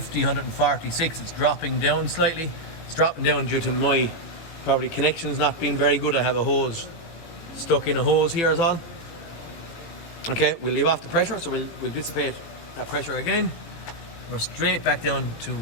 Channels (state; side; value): late; right; 18 ms